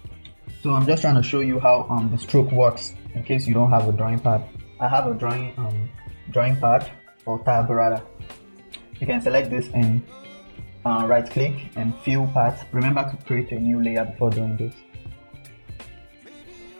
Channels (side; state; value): both; inverted; correlation -1.00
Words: So I'm just trying to show you how the stroke works in case you don't have a drawing pad. I have a drawing pad or tab rather. You can select this and right click and fill path. Remember to create a new layer before doing this.